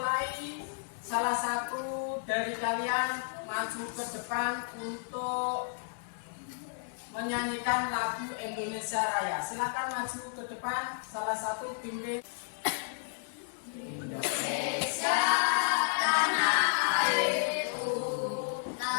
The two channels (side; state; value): right; silent; digital silence